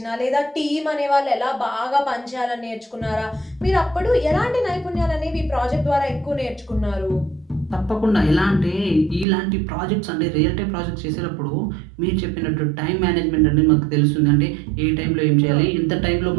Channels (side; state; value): left; drops out; at 9.2 s